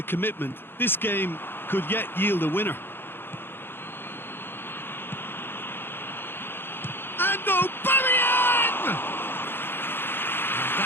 commitment. This game could yet yield a winner. And Aubameyang!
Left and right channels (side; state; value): right; late; 0.10 ms